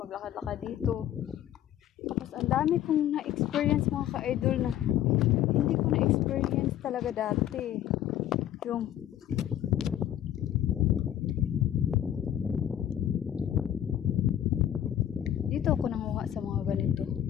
dito. Tapos ang dami kong na-experience mga ka-idol na hindi ko na-experience talaga dati. Yung dito ako nanguha sa mga ganito.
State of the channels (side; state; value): right; quieter; 11.4 dB